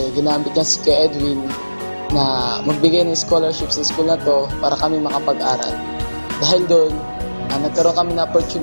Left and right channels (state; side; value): inverted; both; correlation -1.00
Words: ginamit niya si Kuya Edwin na magbigay ng scholarship sa school na to para kami makapag-aral. Dahil doon, nagkaroon kami ng